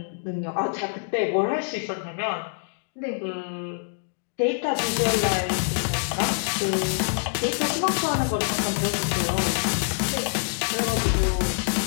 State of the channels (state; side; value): silent; right; digital silence